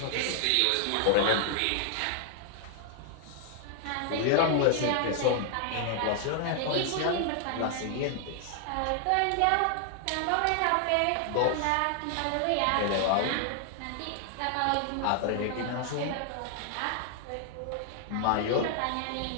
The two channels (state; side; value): different; both; correlation 0.00